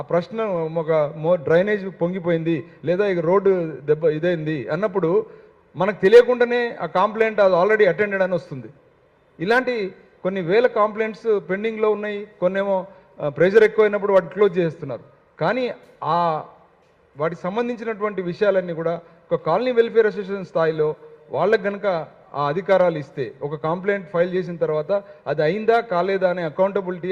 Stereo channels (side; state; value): both; identical; correlation 1.00